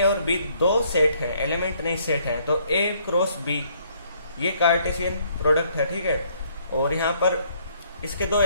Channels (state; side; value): inverted; both; correlation -0.66